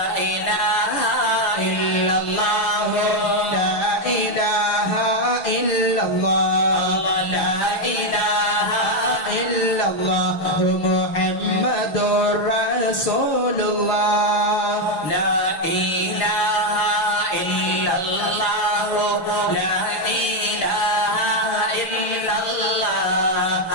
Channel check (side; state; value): right; late; 6.3 ms